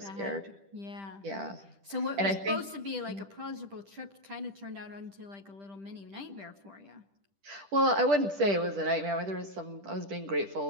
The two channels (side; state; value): left; late; 10 ms